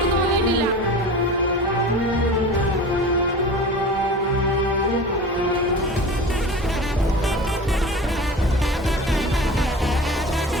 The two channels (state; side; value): normal; both; correlation 0.36